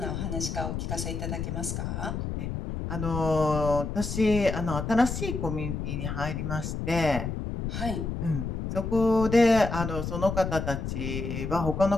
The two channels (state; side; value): noise; left; rumble, 4 dB below the sound